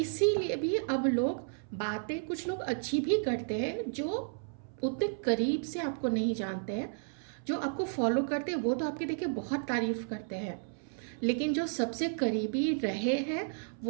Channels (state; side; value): silent; left; 56 dB below the other